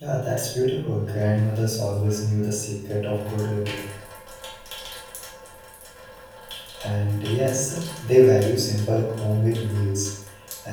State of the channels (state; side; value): identical; both; correlation 1.00